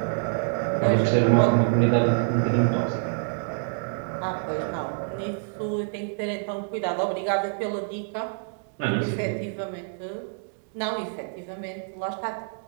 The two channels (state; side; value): silent; left; digital silence